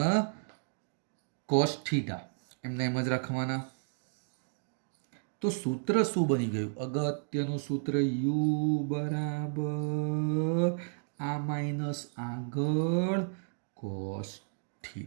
કોસ થીટા એમને એમ જ રાખવાના. તો સૂત્ર શું બની ગયું? અગત્યનું સૂત્ર U બરાબર આ માઇનસ આગળ કોસ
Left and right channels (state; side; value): silent; left; digital silence